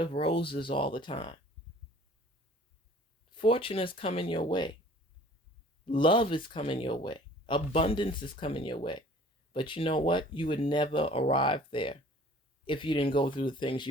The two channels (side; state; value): both; normal; correlation 0.50